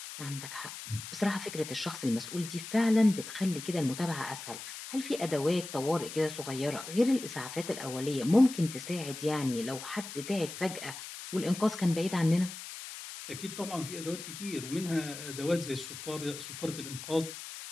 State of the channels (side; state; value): left; noise; hiss, 10 dB below the sound